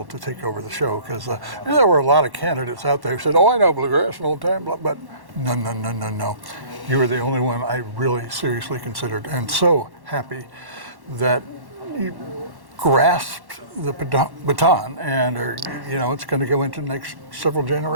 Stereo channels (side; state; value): left; late; 1.1 ms